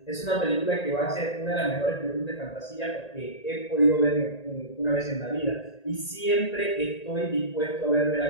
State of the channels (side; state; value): right; late; 1.8 ms